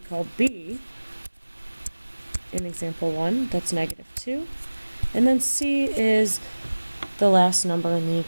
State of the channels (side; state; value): both; inverted; correlation -1.00